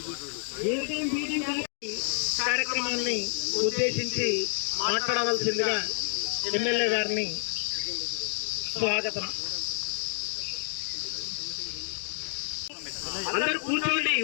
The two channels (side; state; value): right; silent; 58 dB below the other